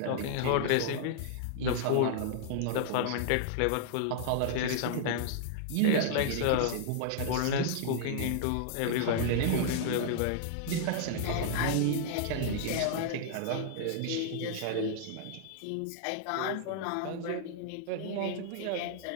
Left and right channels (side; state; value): both; different; correlation -0.01